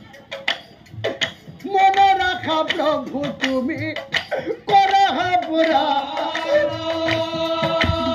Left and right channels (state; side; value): identical; both; correlation 1.00